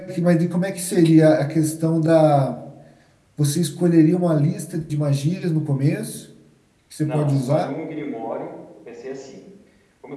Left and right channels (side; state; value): both; identical; correlation 1.00